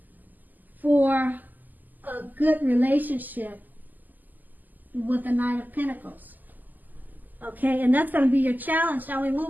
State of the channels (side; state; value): left; late; 0.084 ms